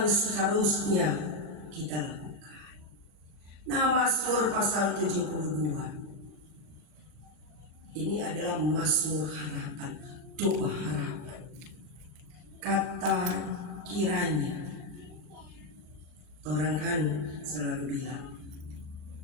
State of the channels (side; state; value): left; late; 39 ms